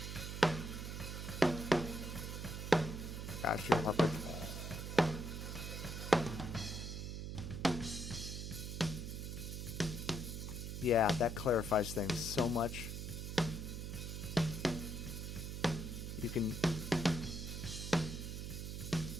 Gosh, you're puppet. Yeah, that clarifies things so much. You can...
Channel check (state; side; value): noise; right; hum, 5 dB below the sound